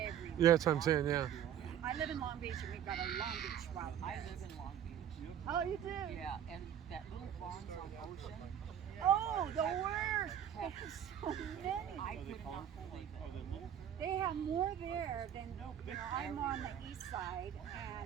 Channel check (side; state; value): left; quieter; 9.7 dB